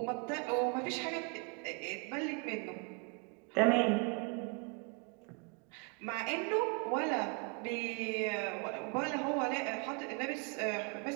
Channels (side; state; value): left; quieter; 34.4 dB